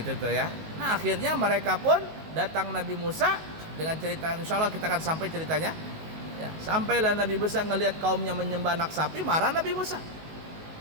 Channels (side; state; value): left; late; 19 ms